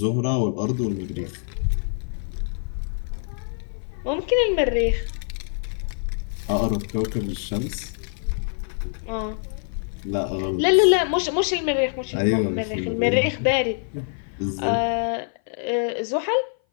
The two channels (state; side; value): silent; right; 58 dB below the other